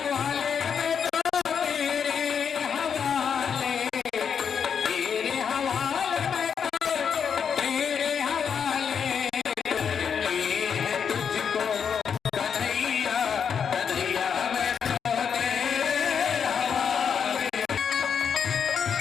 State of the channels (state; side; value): quieter; right; 7.1 dB